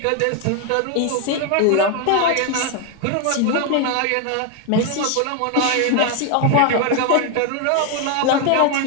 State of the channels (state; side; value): different; both; correlation 0.01